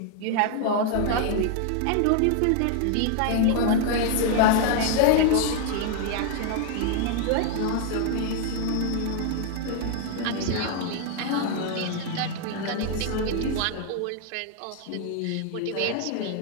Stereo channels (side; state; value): both; different; correlation 0.00